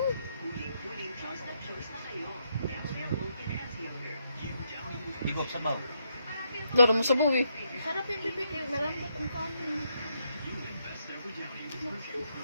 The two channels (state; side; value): inverted; both; correlation -0.77